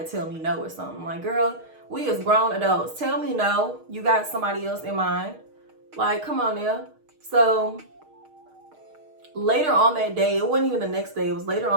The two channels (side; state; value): left; late; 6.4 ms